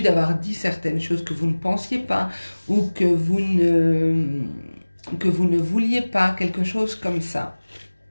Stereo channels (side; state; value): both; inverted; correlation -1.00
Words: d'avoir dit certaines choses que vous ne pensiez pas ou que vous ne vouliez pas, quelque chose comme ça.